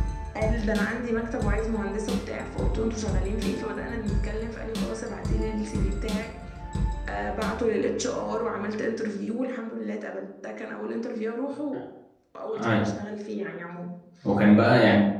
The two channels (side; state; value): both; identical; correlation 1.00